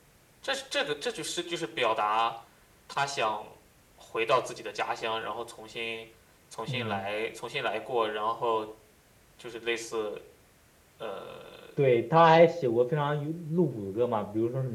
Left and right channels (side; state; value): both; identical; correlation 1.00